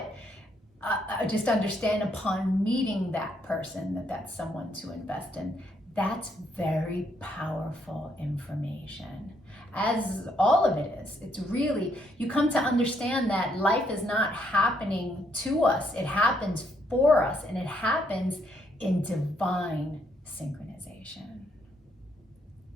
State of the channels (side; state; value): both; normal; correlation 0.72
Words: just understand upon meeting that person that that's someone to invest in. That's very powerful information, as all of it is. It's really, you come to understand that life is not happening to us. It happens for us, and it happens in divine synchronization.